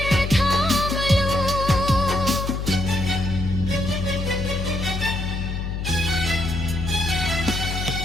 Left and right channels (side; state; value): left; noise; hum, 3 dB below the sound